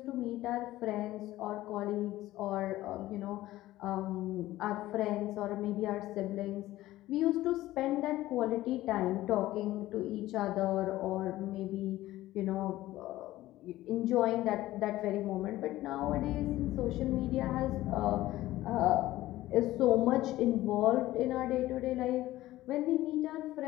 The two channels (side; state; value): right; quieter; 16.0 dB